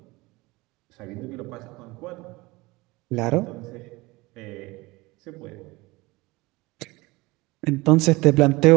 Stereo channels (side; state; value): left; quieter; 22.3 dB